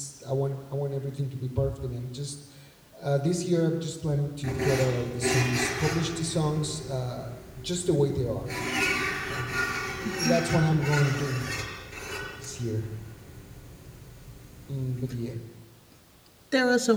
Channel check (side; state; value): both; identical; correlation 1.00